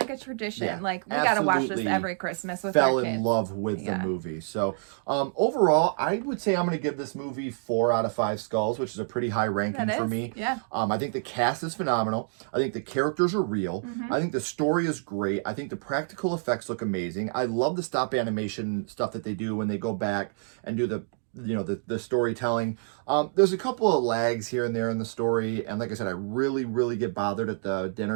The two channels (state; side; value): silent; left; digital silence